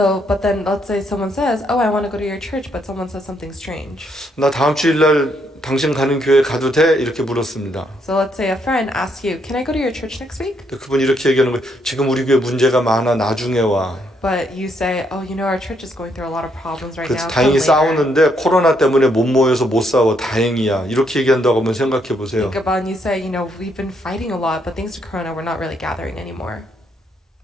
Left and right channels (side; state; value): both; normal; correlation 0.74